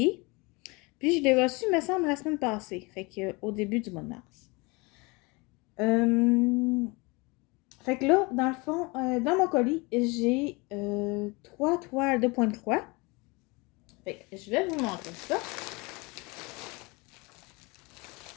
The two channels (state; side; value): quieter; right; 26.7 dB